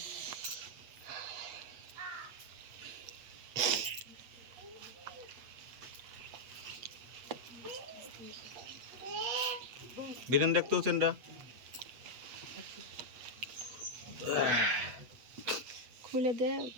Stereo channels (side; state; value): left; late; 8.2 ms